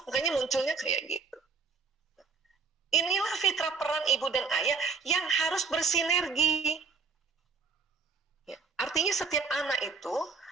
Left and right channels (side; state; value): left; quieter; 4.9 dB